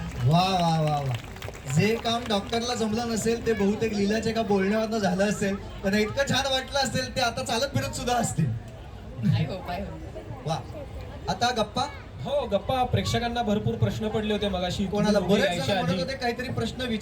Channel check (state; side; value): identical; both; correlation 1.00